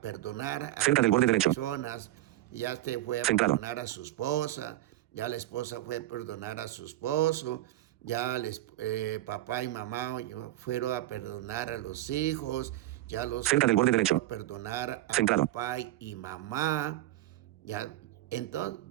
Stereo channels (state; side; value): quieter; left; 15.3 dB